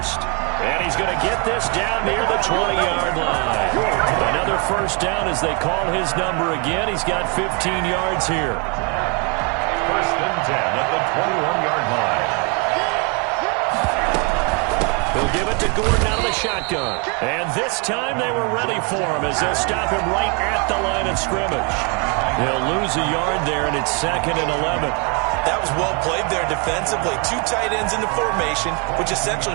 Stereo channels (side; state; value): left; quieter; 34.3 dB